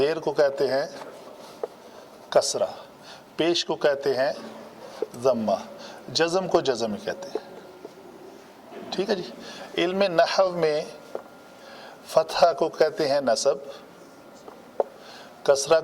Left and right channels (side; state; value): both; identical; correlation 1.00